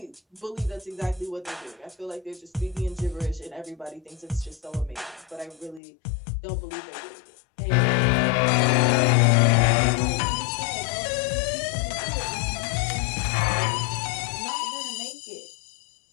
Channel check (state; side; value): drops out; right; at 5.8 s